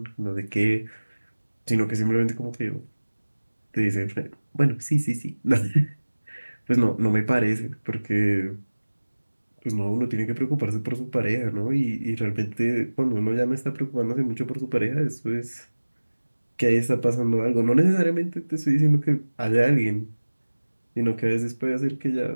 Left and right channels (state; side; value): inverted; both; correlation -1.00